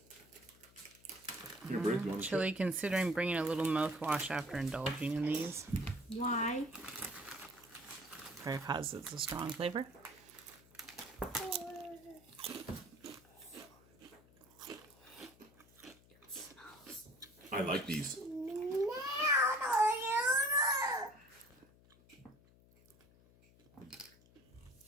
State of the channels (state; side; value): noise; left; hum, 26 dB below the sound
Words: Here, Bruce, you want to Chili considering bringing a little mouthwash after indulging in these. Why? Because it's a strong flavor. I like these.